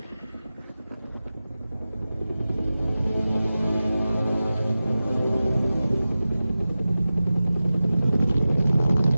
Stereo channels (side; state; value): both; inverted; correlation -0.94